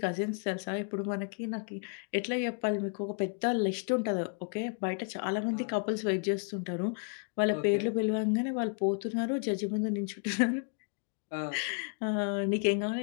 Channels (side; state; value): right; quieter; 39.8 dB